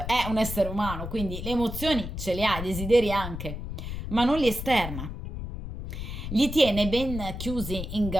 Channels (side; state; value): left; noise; rumble, 7 dB below the sound